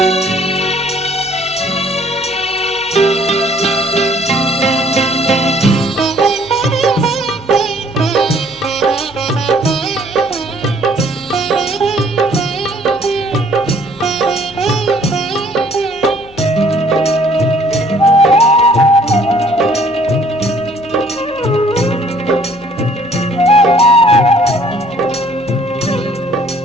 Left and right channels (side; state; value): left; noise; hum, 24 dB below the sound